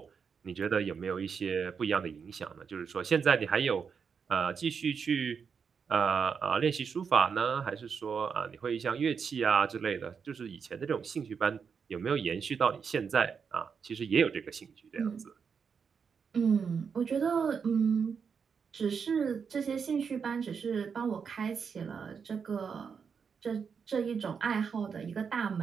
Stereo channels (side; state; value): left; quieter; 6.3 dB